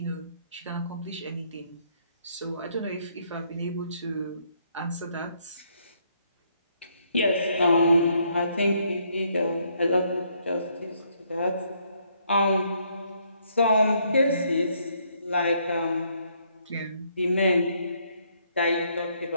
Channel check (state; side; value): inverted; both; correlation -0.71